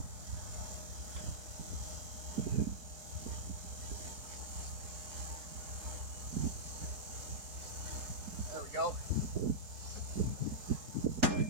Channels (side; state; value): left; late; 4.7 ms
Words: There we go.